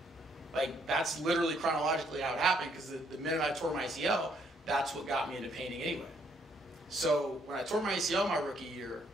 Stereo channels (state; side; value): normal; both; correlation 0.69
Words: Like, that's literally chronologically how it happened, because the minute I tore my ACL, that's what got me into painting anyway. So when I tore my ACL my rookie year,